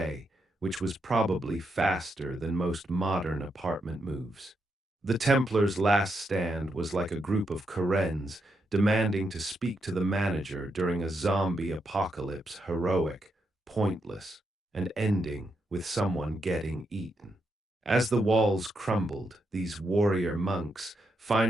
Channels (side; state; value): both; normal; correlation 0.82